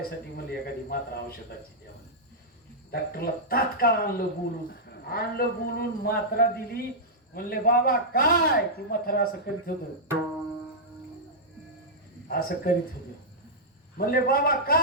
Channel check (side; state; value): both; normal; correlation -0.10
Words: म्हणले एखादी मात्रा औषधाची द्या. डॉक्टरला तात्काळ आणलं बोलून मात्रा दिली. म्हणले बाबा काय? ती म्हातारा असं करीत होत, असं करीत होत. म्हणले बाबा